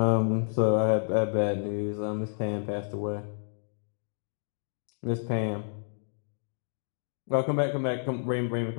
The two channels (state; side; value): silent; right; digital silence